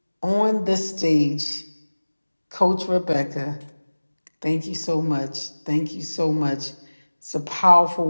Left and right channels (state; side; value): inverted; both; correlation -1.00